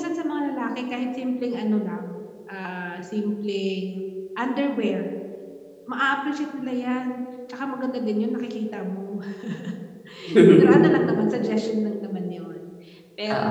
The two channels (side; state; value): both; identical; correlation 1.00